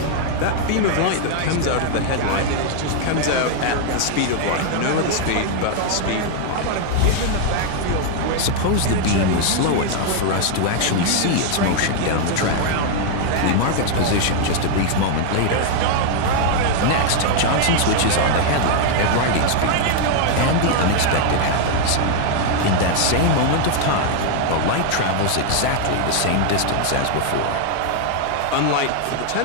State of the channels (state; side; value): different; both; correlation 0.00